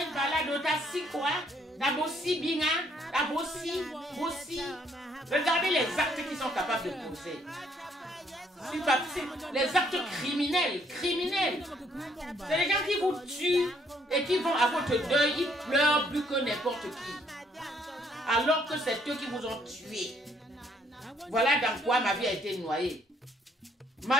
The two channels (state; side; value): normal; both; correlation 0.67